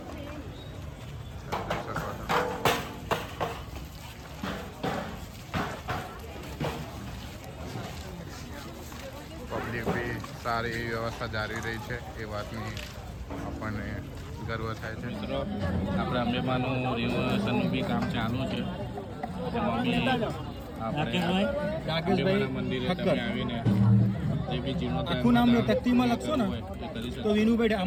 પબ્લિક બી સારી એવી વ્યવસ્થા જાળવી રહી છે એ વાતની આપણને ગર્વ થાય છે. મિત્રો આપણે અંબેમાનું રિનોવેશનનું બી કામ ચાલુ છે. મંદિરે તમે આવીને જે બી જીર્ણોદ્ધાર આખું નામ તકતીમાં લખશો ને તો વિનુભાઈ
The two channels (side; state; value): both; identical; correlation 1.00